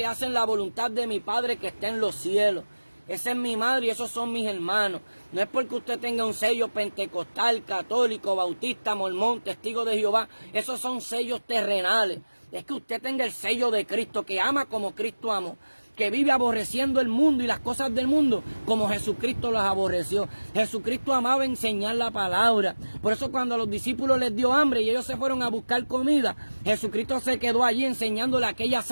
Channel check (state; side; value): inverted; both; correlation -1.00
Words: hacen la voluntad de mi Padre que está en los cielos. Esa es mi madre y esos son mis hermanos. No es porque usted tenga un sello pentecostal, católico, bautista, mormón, testigo de Jehová. Esos son sellos terrenales. Es que usted tenga el sello de Cristo, que ama como Cristo amó, que vive aborreciendo el mundo y las cosas del mundo como Jesucristo las aborreció. Jesucristo amaba enseñar la palabra. Por eso cuando a los discípulos les dio hambre y ellos se fueron a buscar comida, Jesucristo se quedó allí enseñándole a aquella